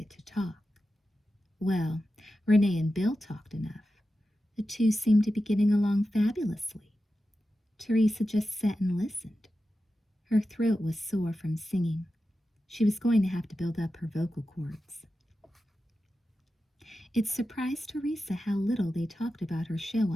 to talk. Well, Renee and Bill talked enough. The two seemed to be getting along fabulously. Teresa just sat and listened. Her throat was sore from singing. She was going to have to build up her vocal cords. It surprised Teresa how little they talked about her show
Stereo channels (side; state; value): both; normal; correlation 0.92